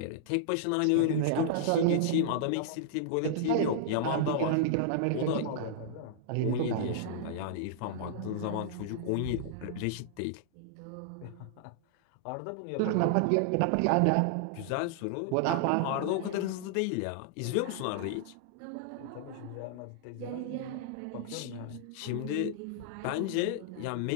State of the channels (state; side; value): different; both; correlation -0.01